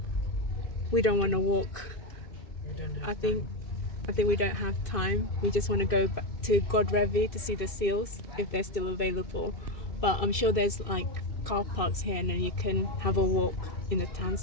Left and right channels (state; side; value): late; right; 2.6 ms